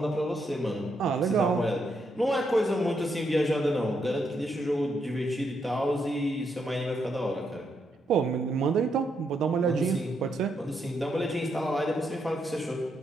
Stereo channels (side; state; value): both; normal; correlation 0.79